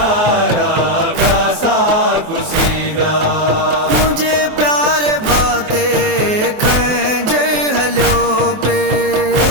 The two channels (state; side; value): late; left; 24 ms